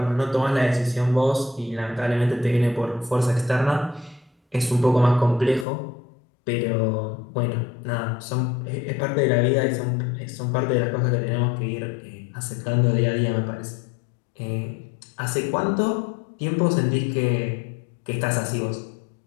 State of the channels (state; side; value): drops out; right; at 5.7 s